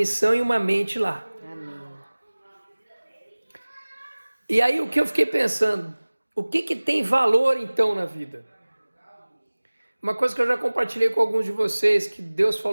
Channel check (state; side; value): inverted; both; correlation -1.00